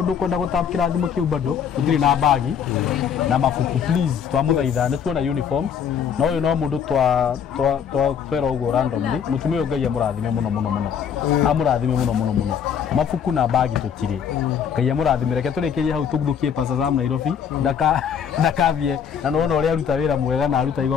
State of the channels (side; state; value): right; quieter; 7.8 dB